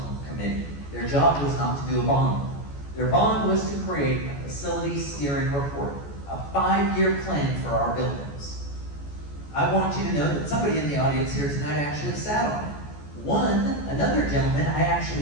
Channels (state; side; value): late; right; 14 ms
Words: committee. Their job was not to do a bond. Their bond was to create a facility steering report, a 5-year plan for our buildings. I want you to know that somebody in the audience here tonight actually sat on it. Another gentleman I